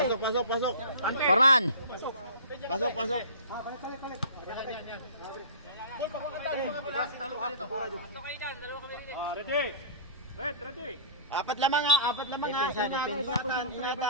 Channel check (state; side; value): inverted; both; correlation -0.39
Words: Forman. Pasok. Ready. Ready. Apat lamang ha.